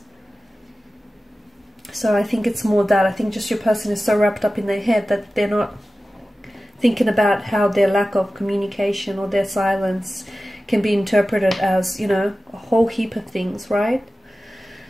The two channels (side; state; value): both; normal; correlation 0.95